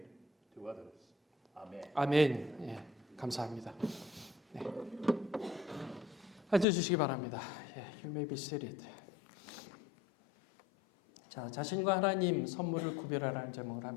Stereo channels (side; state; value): right; drops out; at 6.7 s